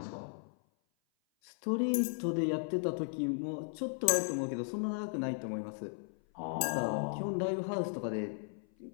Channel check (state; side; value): silent; right; 54 dB below the other